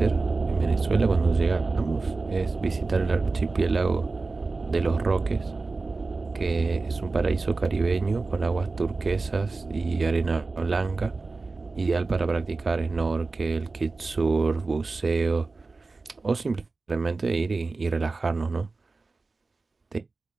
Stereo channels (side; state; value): left; quieter; 3.8 dB